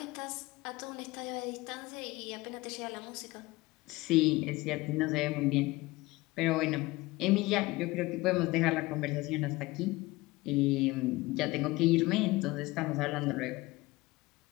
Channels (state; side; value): quieter; right; 20.8 dB